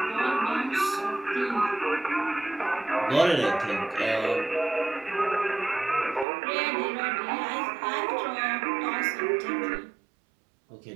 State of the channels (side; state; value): left; drops out; at 6.2 s